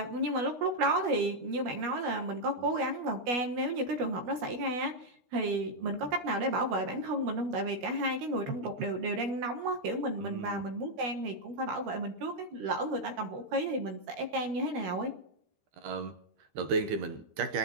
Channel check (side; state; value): left; late; 13 ms